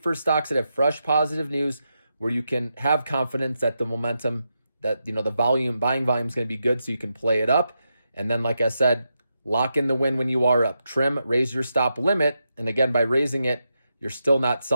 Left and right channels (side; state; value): both; inverted; correlation -0.86